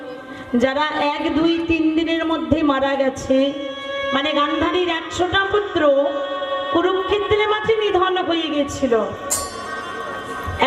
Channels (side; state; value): both; identical; correlation 1.00